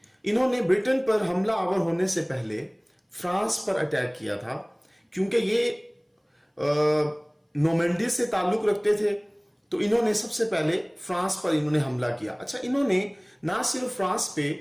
इन्होंने ब्रिटेन पर हमला आवर होने से पहले फ्रांस पर अटैक किया था, क्योंकि ये नॉर्मंडी से ताल्लुक रखते थे। तो इन्होंने सबसे पहले फ्रांस पर इन्होंने हमला किया। अच्छा, इन्होंने ना सिर्फ फ्रांस पे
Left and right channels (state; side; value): identical; both; correlation 1.00